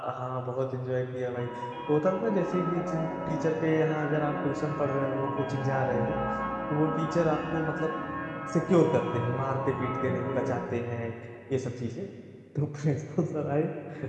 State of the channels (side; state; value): both; identical; correlation 1.00